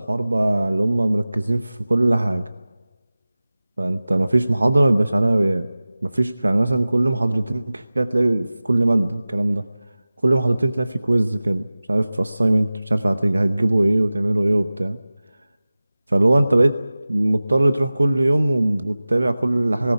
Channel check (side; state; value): both; inverted; correlation -0.97